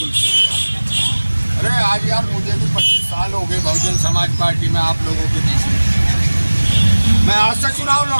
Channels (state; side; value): inverted; both; correlation -1.00